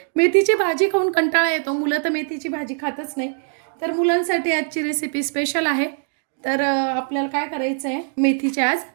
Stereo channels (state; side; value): silent; left; 56 dB below the other